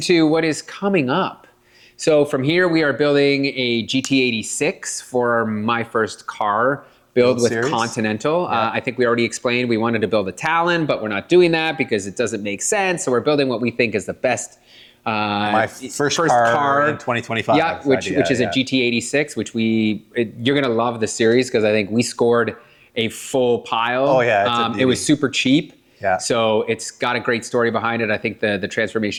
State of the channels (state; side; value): identical; both; correlation 1.00